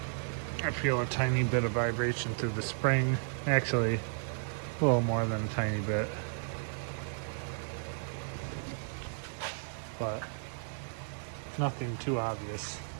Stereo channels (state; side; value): silent; left; digital silence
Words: I feel a tiny bit of vibration through the spring. Actually, a little more than a tiny bit. But nothing too obvious.